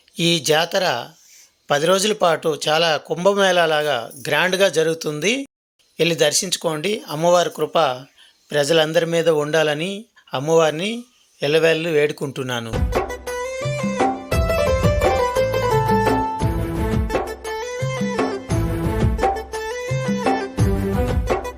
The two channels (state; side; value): identical; both; correlation 1.00